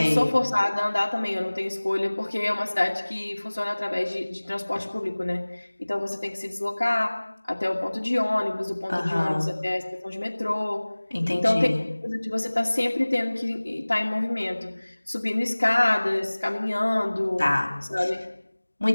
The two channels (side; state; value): both; inverted; correlation -1.00